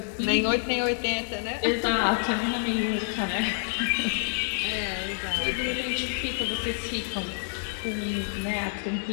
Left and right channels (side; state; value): right; silent; digital silence